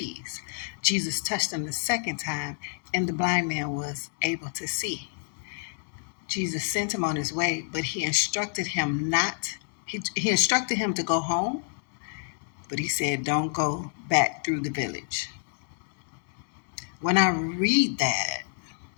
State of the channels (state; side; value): silent; right; 59 dB below the other